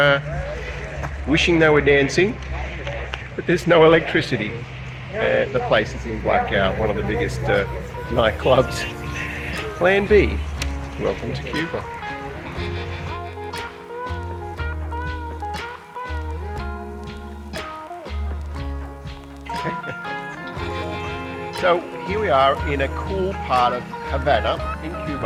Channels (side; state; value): both; identical; correlation 1.00